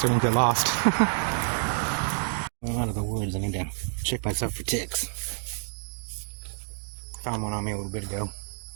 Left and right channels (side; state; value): left; silent; digital silence